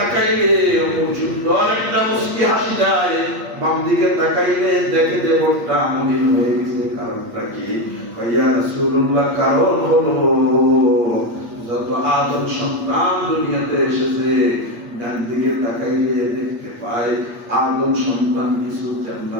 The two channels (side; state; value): left; late; 8.4 ms